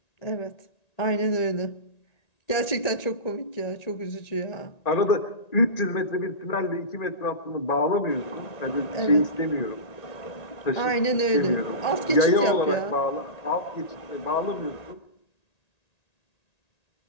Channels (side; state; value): right; late; 1.9 ms